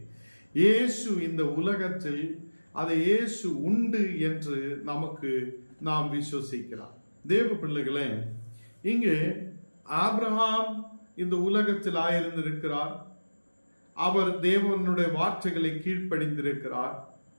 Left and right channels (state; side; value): inverted; both; correlation -1.00